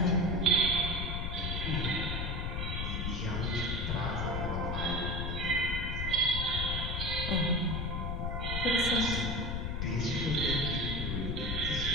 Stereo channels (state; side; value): noise; left; rumble, 1 dB below the sound